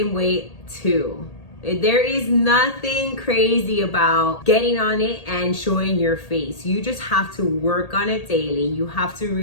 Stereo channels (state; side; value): late; right; 1.8 ms